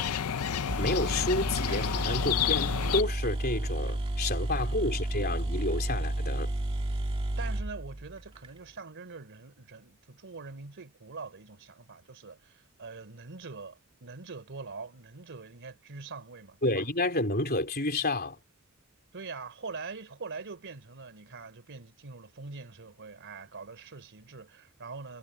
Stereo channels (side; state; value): both; normal; correlation 0.33